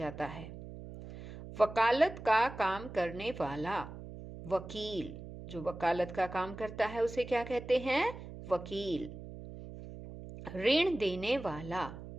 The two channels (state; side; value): noise; right; hum, 12 dB below the sound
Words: है। वकालत का काम करने वाला, वकील, जो वकालत का काम करता है उसे क्या कहते हैं? वकील। ऋण देने वाला,